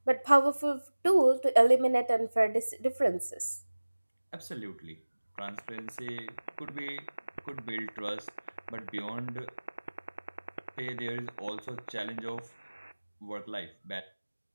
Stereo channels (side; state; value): both; inverted; correlation -1.00